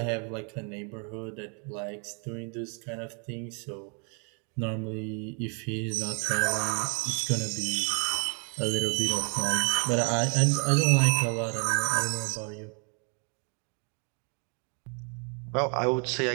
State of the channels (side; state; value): left; quieter; 37.4 dB